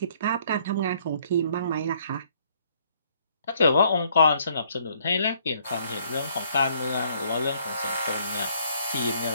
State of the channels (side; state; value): both; inverted; correlation -0.65